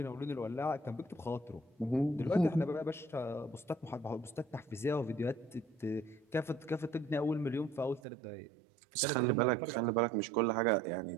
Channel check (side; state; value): left; drops out; at 8.0 s